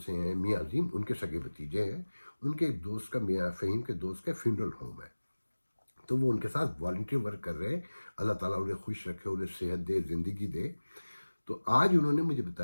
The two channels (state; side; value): inverted; both; correlation -1.00